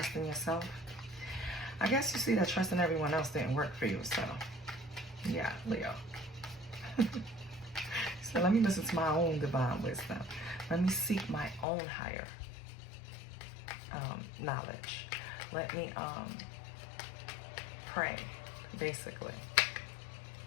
yourself. I guess you see that trusting everyone else didn't work for you, so yeah, Leo. So let me listen to my own divine wisdom. Let me seek my own higher knowledge. Let me pray, basically.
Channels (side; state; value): right; drops out; at 11.7 s